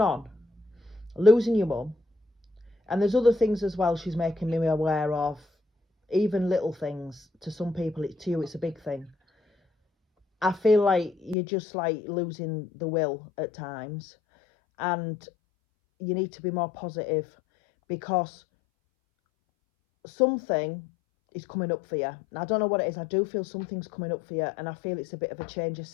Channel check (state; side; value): drops out; right; at 11.4 s